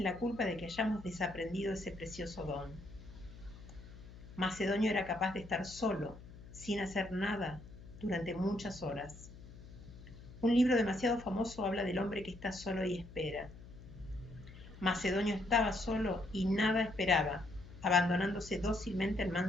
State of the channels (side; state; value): left; noise; hum, 17 dB below the sound